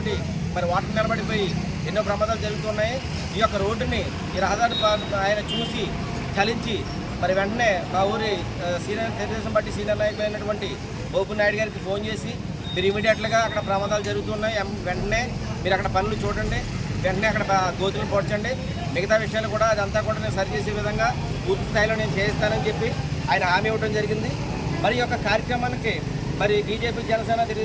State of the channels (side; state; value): both; identical; correlation 1.00